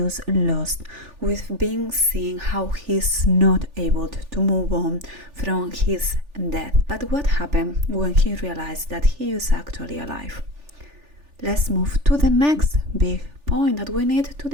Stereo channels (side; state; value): left; late; 3.4 ms